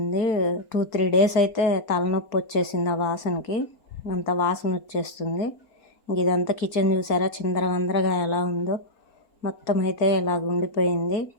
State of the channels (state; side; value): late; right; 4.3 ms